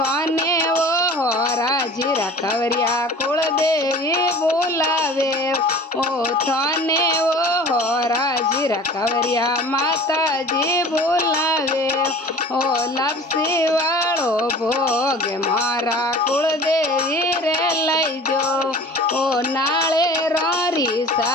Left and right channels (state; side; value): normal; both; correlation 0.42